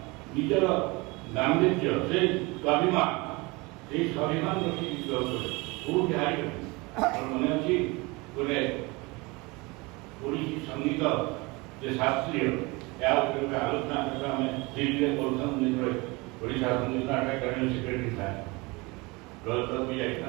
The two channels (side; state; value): left; quieter; 25.2 dB